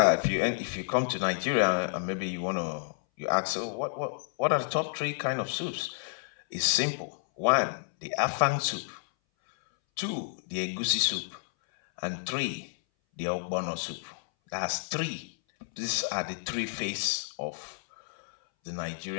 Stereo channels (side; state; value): right; silent; 58 dB below the other